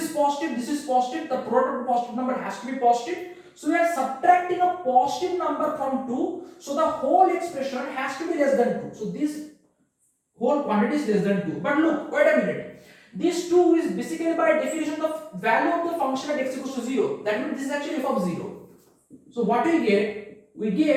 positive, this is positive. The product of positive number has to be positive. So we are subtracting a positive number from 2. So the whole expression has to be less than 2. So this whole quantity is less than 2. But look, wait a minute. This 2 is basically by definition the value of the function at x equals to 0. That means this is actually f of 0. So what we get? We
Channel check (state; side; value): identical; both; correlation 1.00